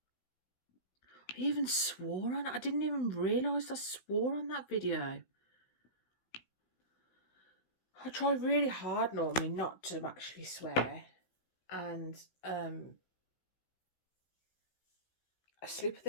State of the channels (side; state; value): right; late; 16 ms